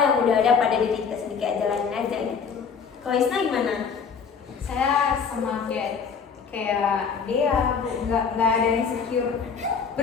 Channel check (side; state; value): right; quieter; 6.1 dB